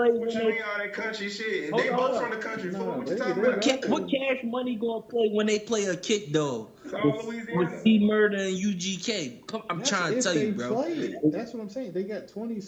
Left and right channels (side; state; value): both; identical; correlation 1.00